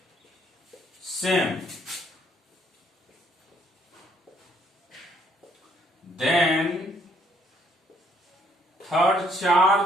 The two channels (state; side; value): normal; both; correlation 0.67